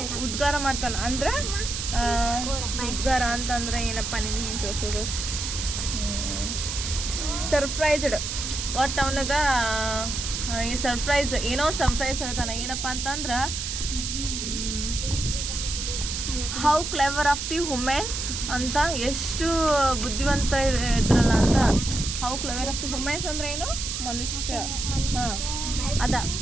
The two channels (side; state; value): right; noise; hiss, 4 dB below the sound